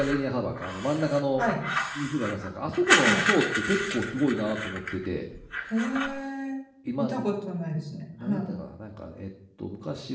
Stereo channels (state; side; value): identical; both; correlation 1.00